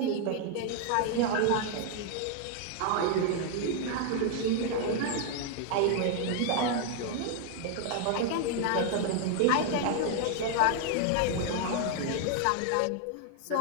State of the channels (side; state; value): both; different; correlation 0.00